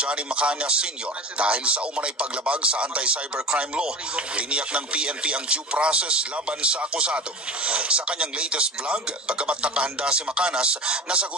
Macana Sr. dahil sa umanay paglabag sa anti-cybercrime law, tiniyak ng PNP ang due process laban sa akusado. Sa kanyang latest vlog, bagamat nakahanda si Macanas na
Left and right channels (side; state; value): both; normal; correlation 0.32